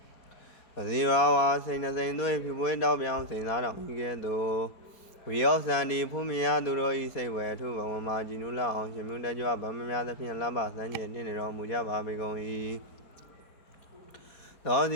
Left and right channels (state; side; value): late; right; 4.2 ms